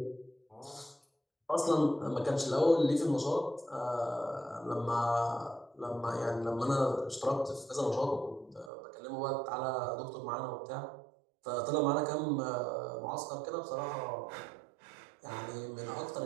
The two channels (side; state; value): left; drops out; at 8.7 s